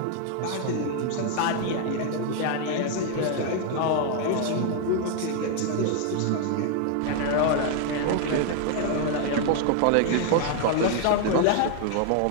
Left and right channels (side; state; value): both; different; correlation 0.00